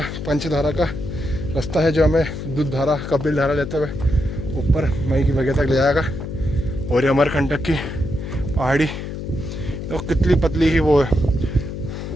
पंचधारा का रास्ता है जो हमें दूध धारा, कपिल धारा लेते हुए ऊपर मई की बगिया तक ले जाएगा। और ये अमरकंटक की पहाड़ी तो कितनी पतली ही वो है,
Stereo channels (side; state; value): left; noise; hum, 7 dB below the sound